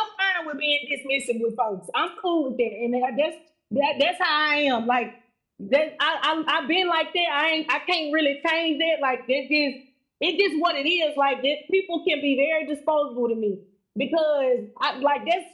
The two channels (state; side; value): identical; both; correlation 1.00